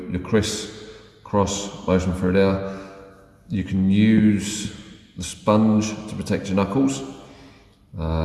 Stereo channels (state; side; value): identical; both; correlation 1.00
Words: your criss-cross motion through there. You can use the sponge to protect your knuckles.